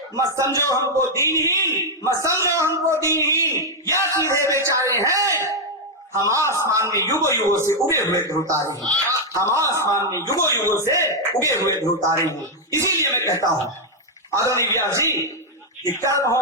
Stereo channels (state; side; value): normal; both; correlation -0.01